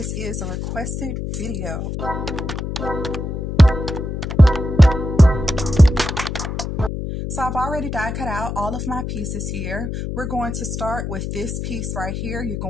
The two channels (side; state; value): left; noise; hum, 4 dB below the sound